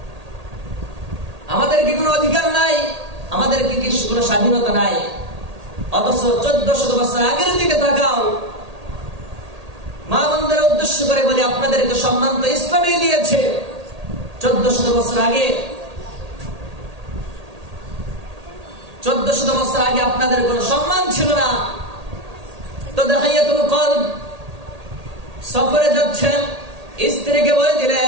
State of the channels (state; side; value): late; left; 1.8 ms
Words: আমাদের কি কোনো অধিকার নাই, আমাদের কি কোনো স্বাধীনতা নাই। অথচ 1400 বছর আগের দিকে তাকাও, মা বোনদের উদ্দেশ্য করে বলি আপনাদেরকে সম্মান তো ইসলামই দিয়েছে। 1400 বছর আগে, 1400 বছর আগে আপনাদের কোনো সম্মান ছিল না। তো দাহিয়াতুল কলব সফরে যাচ্ছেন, স্ত্রীকে বলে